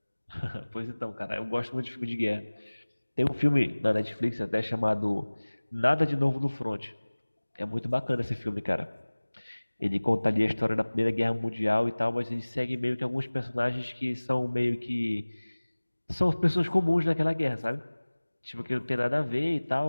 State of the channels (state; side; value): inverted; both; correlation -1.00